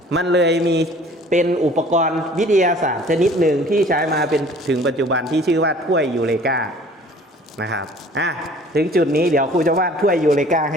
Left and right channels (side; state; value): both; normal; correlation 0.51